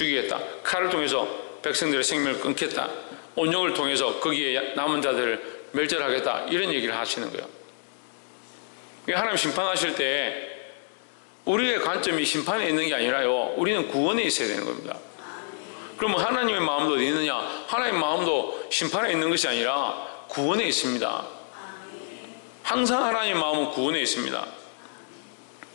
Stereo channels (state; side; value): silent; right; digital silence